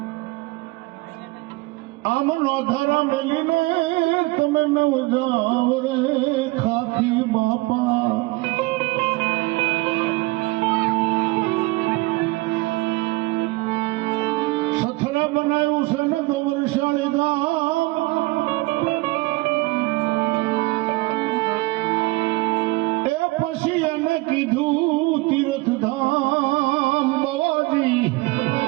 આમ નોધારા મેલીને તમે નવ જાવ રે ખાખી બાપા સથરા બનાવ્યું છે ને ગોવરશાળી ગામ એ પછી એને કીધું તીર્થધામ બાવાજી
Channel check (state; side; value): quieter; left; 22.6 dB